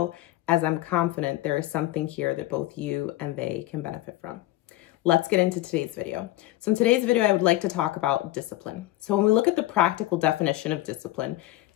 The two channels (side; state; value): right; quieter; 16.4 dB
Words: as I'm confident there is something here that both you and they can benefit from. Let's get into today's video. So in today's video, I would like to talk about discipline. So when we look at the practical definition of discipline,